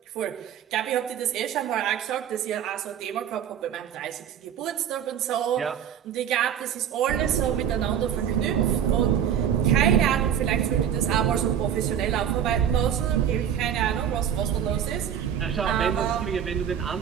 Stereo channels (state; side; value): quieter; left; 9.1 dB